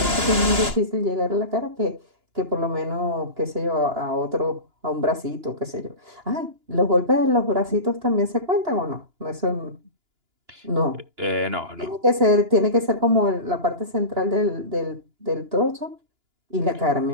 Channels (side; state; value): left; late; 2.9 ms